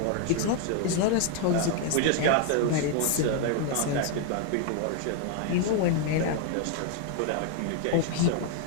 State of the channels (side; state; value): both; different; correlation 0.00